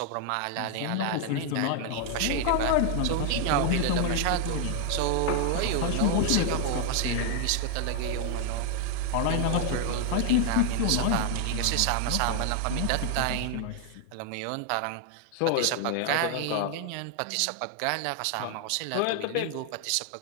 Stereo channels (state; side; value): different; both; correlation 0.00